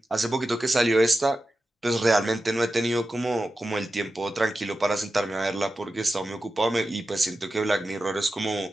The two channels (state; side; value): normal; both; correlation 0.92